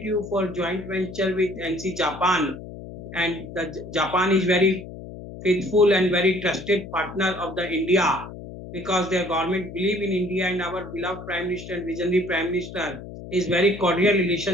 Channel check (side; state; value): left; noise; hum, 12 dB below the sound